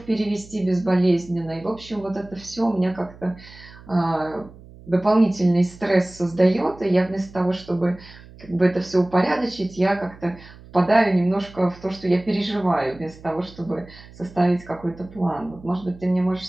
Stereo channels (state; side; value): noise; right; hum, 20 dB below the sound